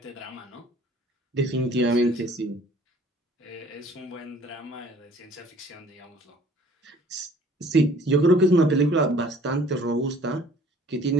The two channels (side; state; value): both; normal; correlation 0.53